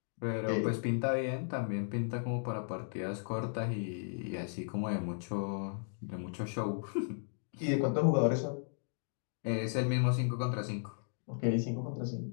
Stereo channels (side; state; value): right; silent; digital silence